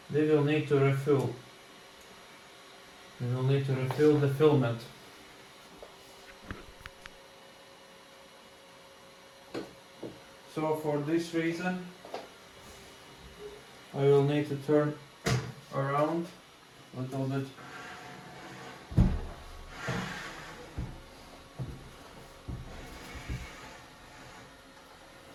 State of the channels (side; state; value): both; identical; correlation 1.00